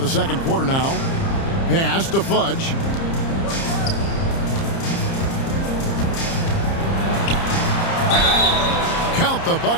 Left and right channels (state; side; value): late; right; 30 ms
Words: second quarter now. Pass to Fudge. Count the